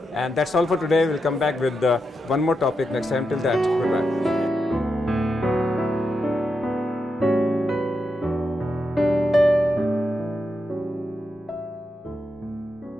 And that's all for today. We'll come back with one more topic next time. Till that, goodbye.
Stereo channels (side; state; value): both; normal; correlation 0.86